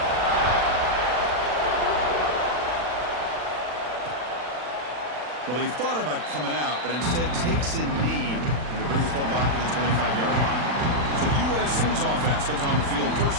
Well, he thought about coming out, but instead takes a knee and to bring the football to the 25-yard line. So USC's offense comes on the field first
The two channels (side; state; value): left; late; 40 ms